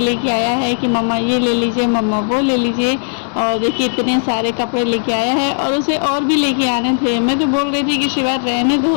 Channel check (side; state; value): right; silent; digital silence